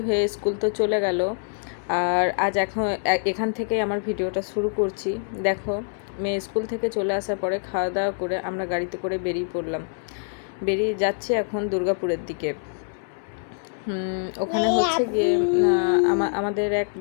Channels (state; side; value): silent; right; 62 dB below the other